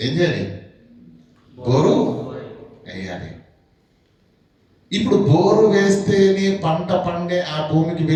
చేయాలి? బోరు వేయాలి. ఇప్పుడు బోరు వేస్తేనే పంట పండే ఆ భూమికి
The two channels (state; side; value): identical; both; correlation 1.00